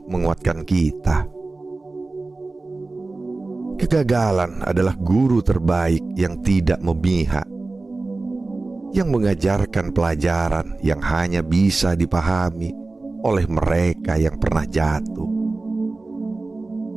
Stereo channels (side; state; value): left; quieter; 3.4 dB